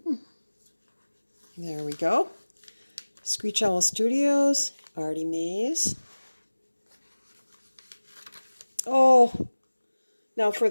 There we go. Screech Owl Studios, Artymaze. Oh, now for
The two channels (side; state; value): both; inverted; correlation -1.00